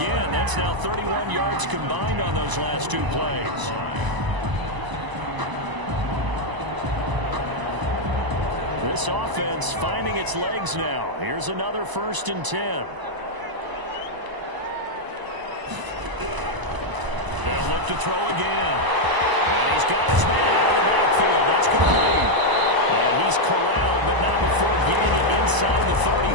That's now 31 yards combined on those last 2 plays. This offense finding its legs now. Here's another 1st and 10. They'll look to throw again. And he's got his man out of the backfield. That's complete. And he's corralled, but not before getting it inside the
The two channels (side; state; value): left; late; 1.0 ms